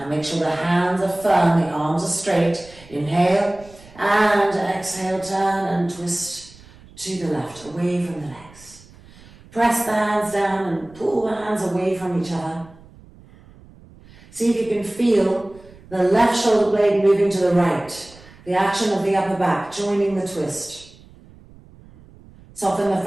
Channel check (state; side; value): noise; right; rumble, 23 dB below the sound